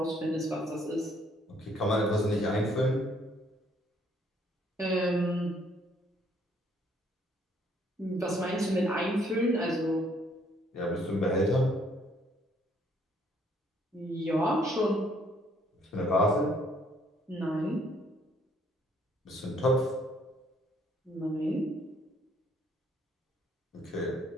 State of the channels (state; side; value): normal; both; correlation 0.65